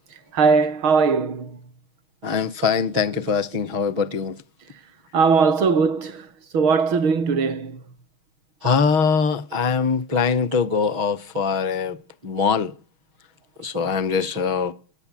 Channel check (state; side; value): late; left; 6.3 ms